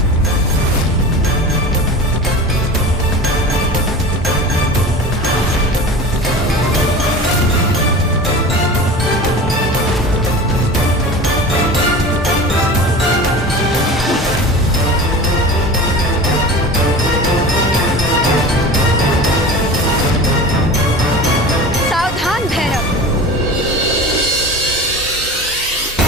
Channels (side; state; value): both; normal; correlation 0.34